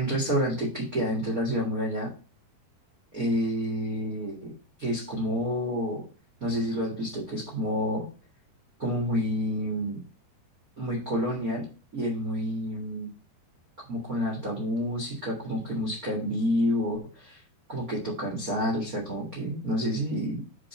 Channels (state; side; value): normal; both; correlation 0.20